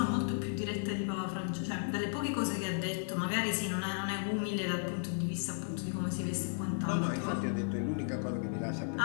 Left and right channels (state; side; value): silent; right; digital silence